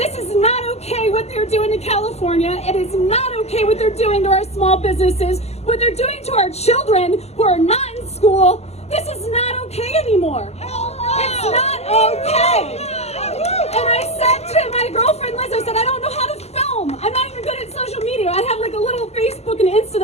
is not okay what they're doing to California. It is not okay what they're doing to our small businesses, what they're doing to our children who are not in school. This is not okay anymore. It's not okay. And I said to my girlfriend Liz, I said, I don't know how to film. I'm not even good at social media. I have like a little Facebook and Insta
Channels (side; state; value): right; late; 0.31 ms